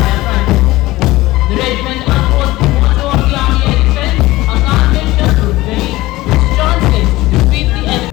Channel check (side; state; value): right; quieter; 18.4 dB